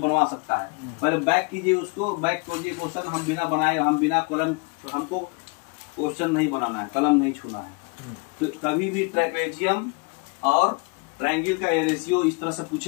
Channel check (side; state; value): right; quieter; 31.2 dB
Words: सकता है। पहले बैक कीजिए उसको, बैक कीजिए क्वेश्चन, हम बिना बनाए, हम बिना कलम, हमको क्वेश्चन नहीं बनाना है, कलम नहीं छूना है। तो कभी भी ट्रेपेजियम और ट्रायंगल का रेशियो इस तरह से